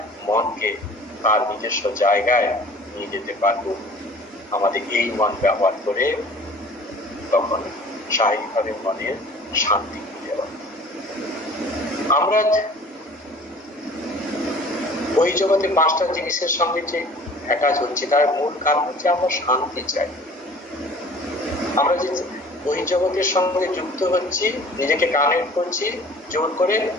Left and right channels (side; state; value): both; normal; correlation 0.48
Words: মনকে তার নিজস্ব জায়গায় নিয়ে যেতে পারবো, আমাদের এই মন ব্যবহার করে, তখন স্বাভাবিকভাবে মনের শান্তি খুঁজে পাবো। আমরা ওই জগতে পাঁচটা জিনিসের সঙ্গে যে অ্যাটাচ হচ্ছে, তার মূল কারণ হচ্ছে আমরা শান্তি চাই। আমরা যে ওই জগতের সঙ্গে যুক্ত হচ্ছি, নিজেকে কানেক্ট করছি জোর করে,